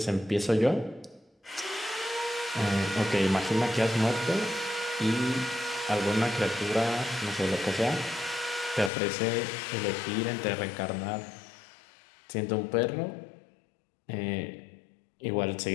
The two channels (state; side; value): drops out; right; at 8.9 s